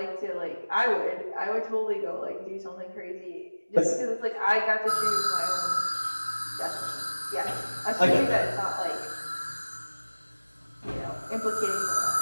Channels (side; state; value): both; inverted; correlation -1.00